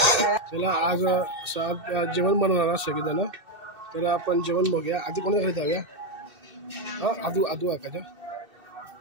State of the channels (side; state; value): left; late; 2.6 ms